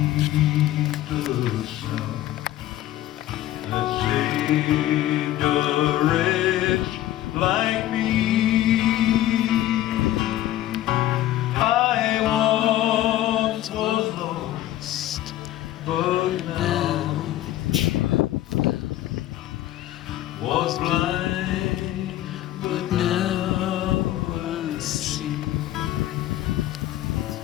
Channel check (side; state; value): right; quieter; 13.9 dB